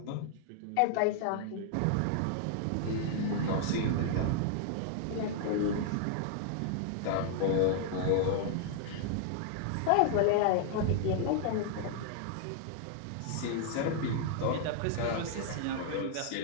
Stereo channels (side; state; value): both; different; correlation -0.01